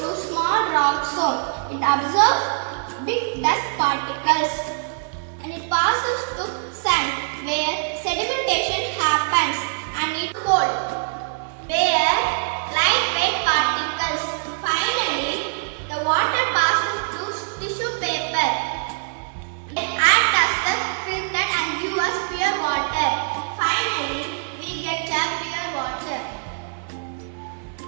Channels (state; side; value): silent; left; digital silence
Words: small rock stone. It absorbs big dust particles. And it passes to sand where sedimentation happens, and it cold where lightweight particles. Finally, the water passes to tissue paper. It acts as the filter and gives us pure water. Finally, we get a pure water.